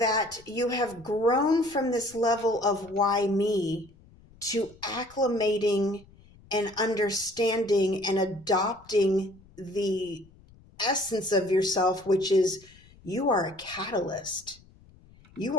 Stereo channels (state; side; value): noise; left; rumble, 26 dB below the sound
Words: you have grown from this level of why me to acclimating and understanding and adopting the essence of yourself, which is you are a catalyst. You